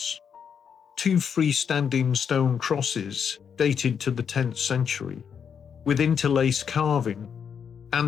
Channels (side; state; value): right; quieter; 7.2 dB